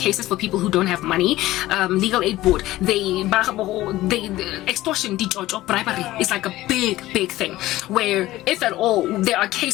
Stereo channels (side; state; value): right; quieter; 16.5 dB